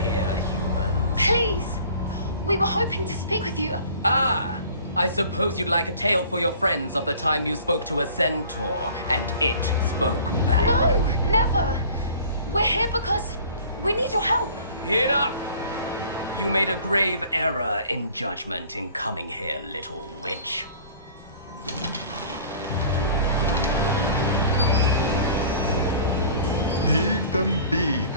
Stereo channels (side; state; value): both; inverted; correlation -0.48